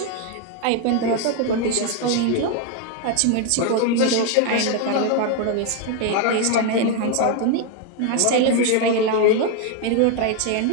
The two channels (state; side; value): different; both; correlation 0.01